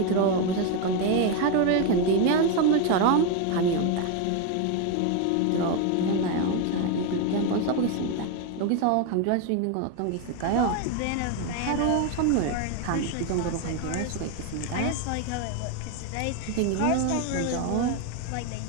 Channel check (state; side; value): different; both; correlation 0.02